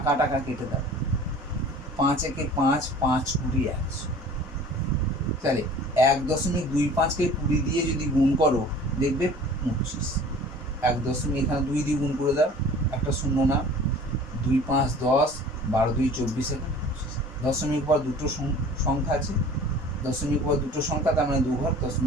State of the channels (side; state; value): both; normal; correlation 0.45